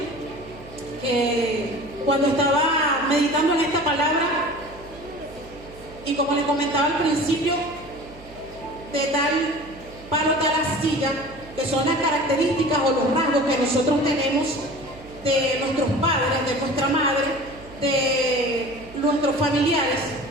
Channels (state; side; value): noise; right; hum, 20 dB below the sound